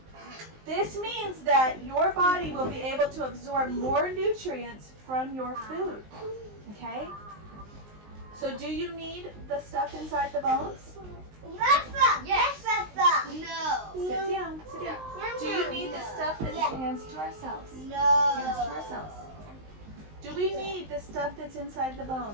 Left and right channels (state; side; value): late; left; 19 ms